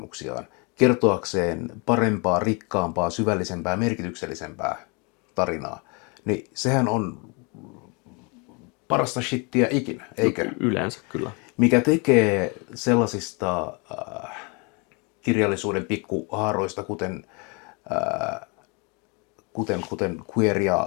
kertoakseen parempaa, rikkaampaa, syvällisempää, merkityksellisempää tarinaa, niin sehän on parasta shittiä ikinä, eikö? Yleensä kyllä. Mikä tekee sellaisista kirjallisuuden pikkuhaaroista, kuten queer-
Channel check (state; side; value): quieter; right; 31.6 dB